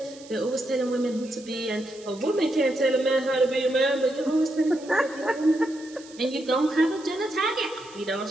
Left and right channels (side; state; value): right; noise; hiss, 21 dB below the sound